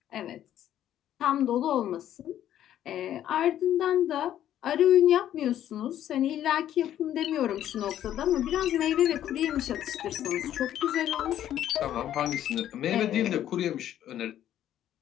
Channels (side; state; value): right; quieter; 11.4 dB